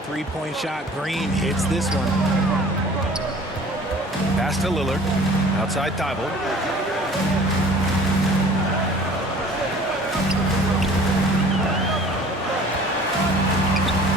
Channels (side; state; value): both; normal; correlation 0.48